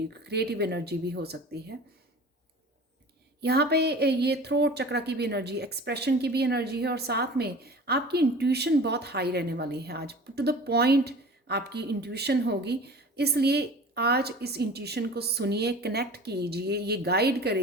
क्रिएटिव एनर्जी भी हो सकती है। यहाँ पे ये थ्रोट चक्रा की भी एनर्जी, एक्सप्रेशन की भी एनर्जी है और साथ में आपकी इंट्यूशन बहुत हाई रहने वाली है आज। टू द पॉइंट आपकी इंट्यूशन होगी, इसलिए आज इस इंट्यूशन को सुनिए, कनेक्ट कीजिए। ये गाइड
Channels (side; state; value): both; normal; correlation 0.40